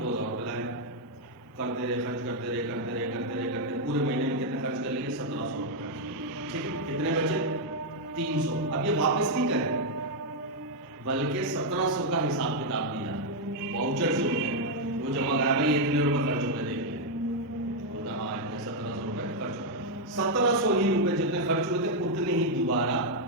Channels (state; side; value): normal; both; correlation 0.00